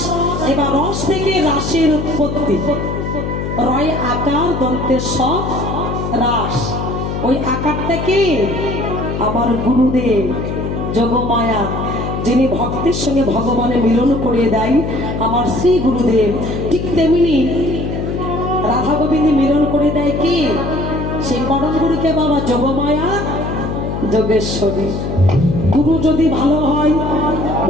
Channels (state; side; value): noise; left; hum, 3 dB below the sound